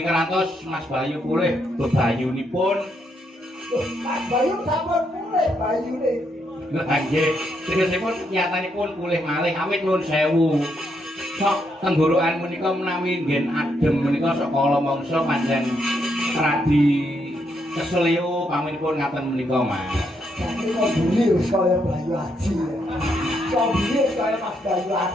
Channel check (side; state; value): both; normal; correlation 0.77